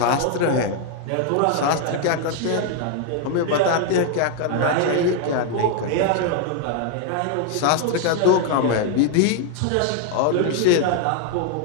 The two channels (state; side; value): different; both; correlation 0.00